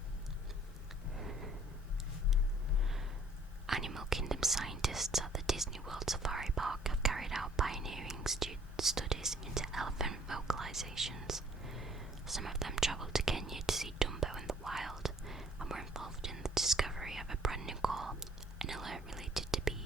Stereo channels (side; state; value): both; normal; correlation 0.59